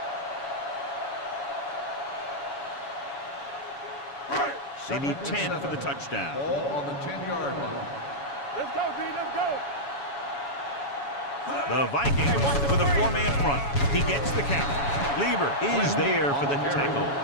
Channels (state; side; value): late; right; 7.1 ms